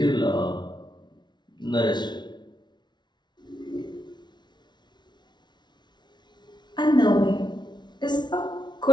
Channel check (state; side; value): late; right; 0.21 ms